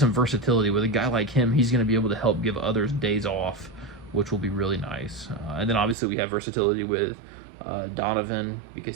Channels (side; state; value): left; drops out; at 6.0 s